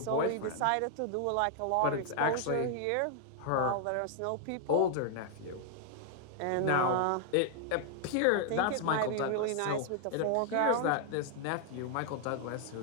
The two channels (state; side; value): different; both; correlation 0.00